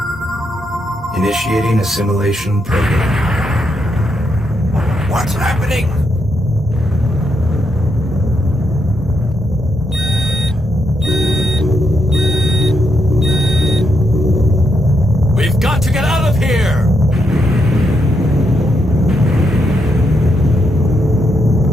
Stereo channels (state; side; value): normal; both; correlation 0.80